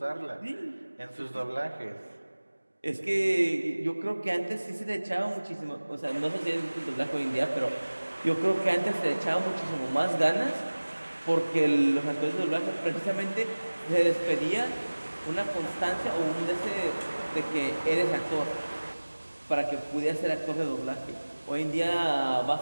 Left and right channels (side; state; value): both; inverted; correlation -1.00